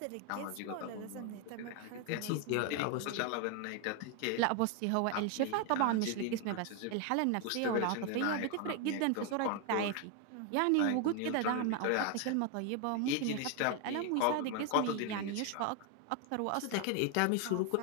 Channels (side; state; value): both; different; correlation 0.01